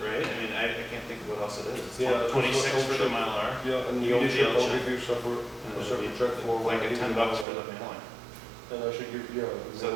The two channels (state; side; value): drops out; left; at 7.5 s